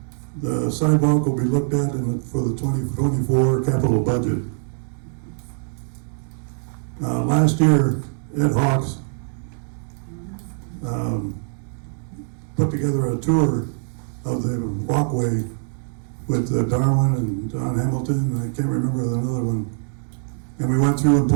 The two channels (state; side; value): silent; left; digital silence